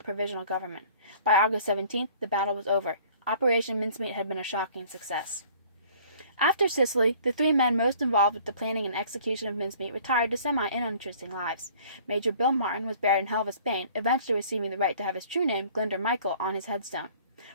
a provisional government. By August 17th, the battle was over. Operation Mincemeat had been a shocking success. After Sicily, the 3 men most involved with the planning and execution of Mincemeat retired to semi-uninteresting lives. Major Bill Martin was buried in Helva, Spain, eventually receiving the right to have his true name, Glinder Michael, on his headstone.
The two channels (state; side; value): inverted; both; correlation -0.53